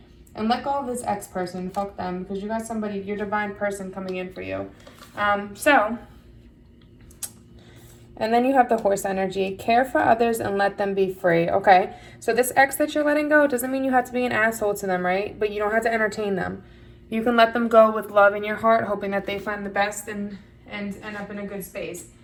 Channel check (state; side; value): identical; both; correlation 1.00